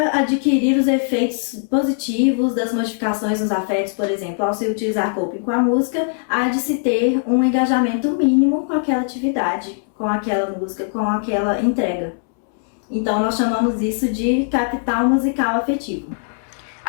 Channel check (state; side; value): silent; right; 66 dB below the other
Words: adquirir os efeitos positivos das modificações nos afetos, por exemplo, ao se utilizar coping com a música, há de se ter um engajamento mínimo com aquela atividade, com aquela música, com aquela entrega. Então, nós chamamos isso de capital musical afetivo.